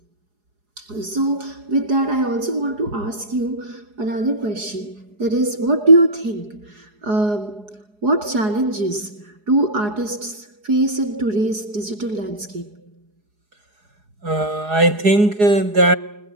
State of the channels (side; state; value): left; late; 4.8 ms